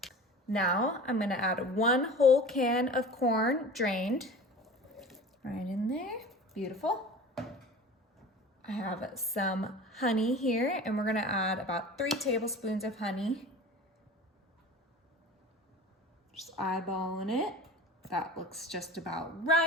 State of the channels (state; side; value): normal; both; correlation 0.37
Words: Now I'm gonna add 1 whole can of corn, drained. Right in there, beautiful. I have some honey here, and we're gonna add about 3 tablespoons of honey. Just eyeballing it. That looks just about